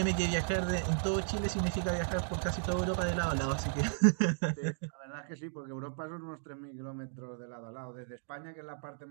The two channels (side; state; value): left; silent; digital silence